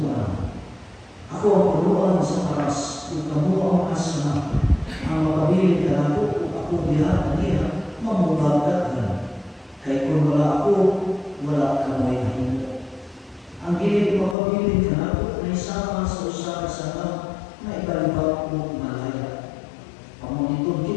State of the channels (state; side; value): drops out; right; at 14.4 s